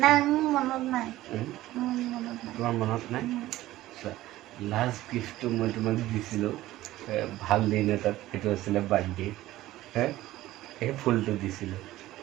নাই মোৰ মনত নাই তোমাৰ মনত নাই লাষ্ট গিফ্টটো মই তোমাক দিছিলোঁ ভাল দিন এটাত সেইটো আছিলে বাৰ্থডে সেই ফুলটো দিছিলোঁ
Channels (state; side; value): quieter; left; 15.9 dB